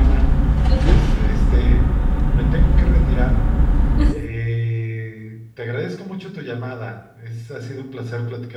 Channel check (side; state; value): both; identical; correlation 1.00